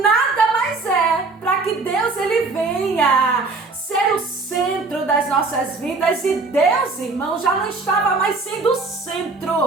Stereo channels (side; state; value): left; quieter; 3.8 dB